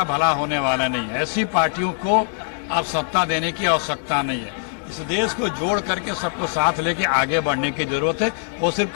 भला होने वाला नहीं है। ऐसी पार्टियों को अब सत्ता देने की आवश्यकता नहीं है। इस देश को जोड़ करके सबको साथ लेके आगे बढ़ने की जरूरत है। वो सिर्फ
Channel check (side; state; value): right; silent; digital silence